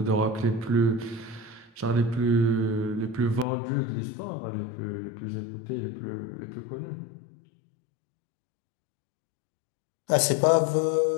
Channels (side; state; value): right; drops out; at 3.5 s